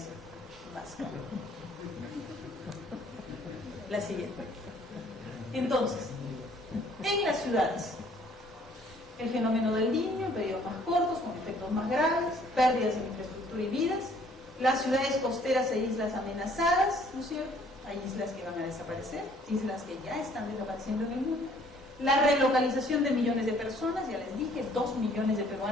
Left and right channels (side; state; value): both; normal; correlation 0.60